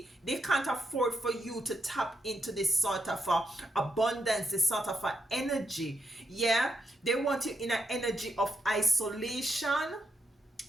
they can't afford for you to tap into this sort of abundance, this sort of energy. They want you in an energy of isolation,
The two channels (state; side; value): normal; both; correlation 0.82